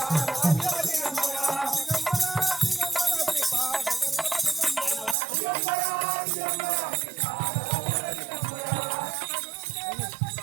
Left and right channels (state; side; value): drops out; left; at 5.2 s